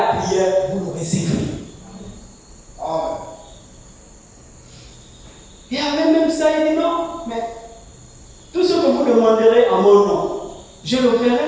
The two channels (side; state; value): both; identical; correlation 1.00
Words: prière, vous le recevrez. Et avec même ça, il dit non, mais tout ce que vous demanderez en mon nom, je le ferai.